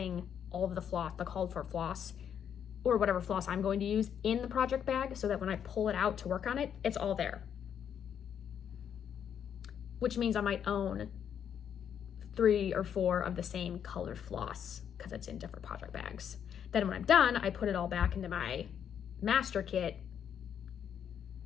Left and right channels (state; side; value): quieter; right; 8.6 dB